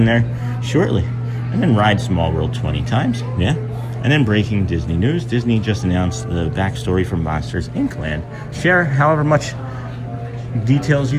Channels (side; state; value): both; identical; correlation 1.00